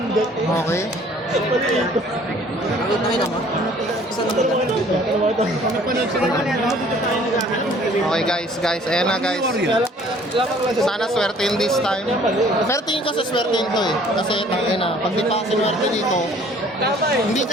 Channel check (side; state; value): both; normal; correlation 0.55